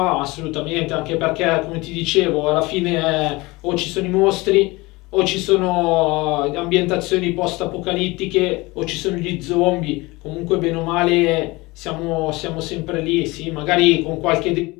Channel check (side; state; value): right; quieter; 22.6 dB